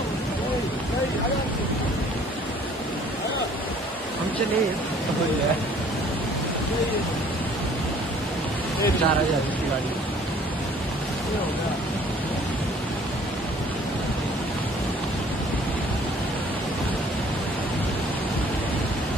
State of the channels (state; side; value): normal; both; correlation 0.56